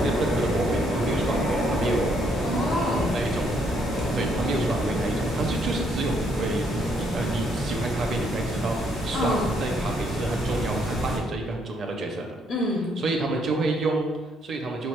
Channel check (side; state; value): both; normal; correlation 0.71